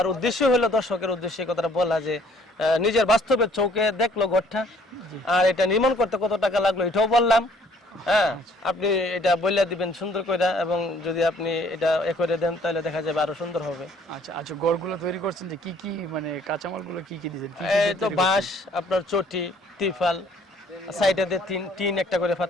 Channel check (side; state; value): both; normal; correlation 0.60